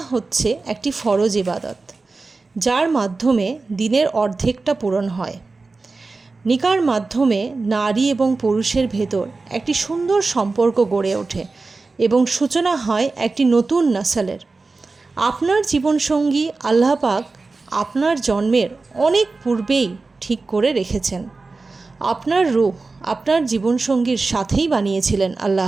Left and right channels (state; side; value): quieter; left; 3.8 dB